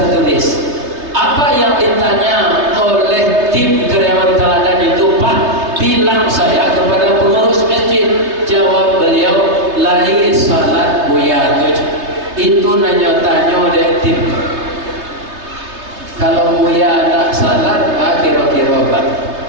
Apa yang ditanya oleh tim karyawan teladan itu Pak? Bilang saya kepada pengurus masjid. Jawab beliau, lahir salat Buya tuh. Itu nanya-tanya oleh tim. Kalau Buya tak salat, Pak kira-kira Pak.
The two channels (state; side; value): late; left; 3.3 ms